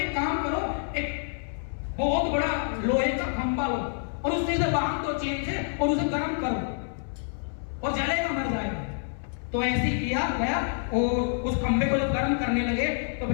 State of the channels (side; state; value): right; silent; 60 dB below the other